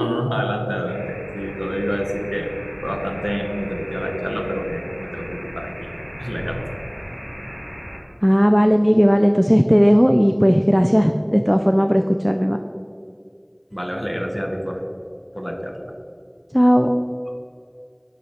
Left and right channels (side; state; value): both; identical; correlation 1.00